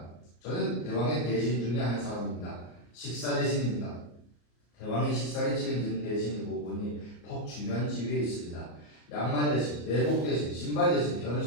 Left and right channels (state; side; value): late; right; 34 ms